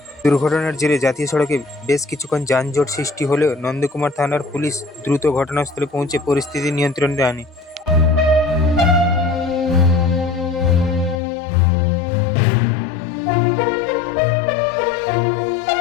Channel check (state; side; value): drops out; right; at 11.2 s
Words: দুর্ঘটনার জেরে জাতীয় সড়কে বেশ কিছুক্ষণ যানজট সৃষ্টি হলেও নন্দকুমার থানার পুলিশ দ্রুত ঘটনাস্থলে পৌঁছে পরিস্থিতি নিয়ন্ত্রণে আনে।